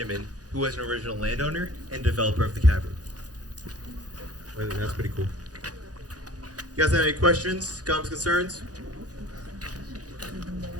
who was an original landowner and developer of the cavern. That's pretty cool. You guys have any questions, comments, concerns?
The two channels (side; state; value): left; late; 0.68 ms